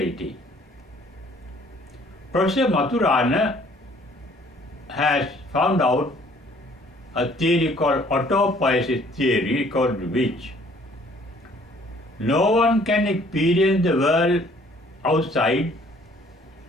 Professor Maturana has found out a theory called autopoesis theory, according to which no one can experience the world outside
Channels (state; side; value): normal; both; correlation 0.58